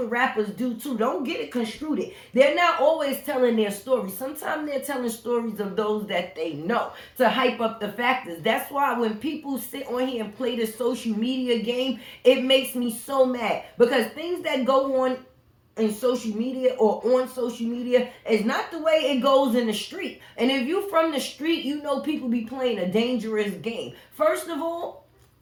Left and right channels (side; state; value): both; identical; correlation 1.00